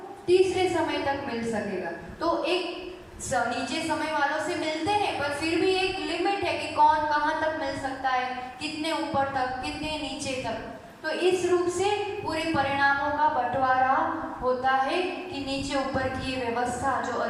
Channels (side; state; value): both; identical; correlation 1.00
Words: तीसरे समय तक मिल सकेगा। तो एक नीचे समय वालों से मिलते हैं पर फिर भी एक लिमिट है कि कौन कहाँ तक मिल सकता है, कितने ऊपर तक, कितने नीचे तक। तो इस रूप से पूरे परिणामों का बंटवारा होता है कि नीचे ऊपर की ये व्यवस्था जो